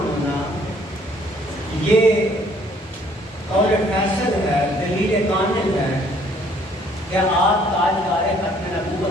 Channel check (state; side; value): normal; both; correlation 0.61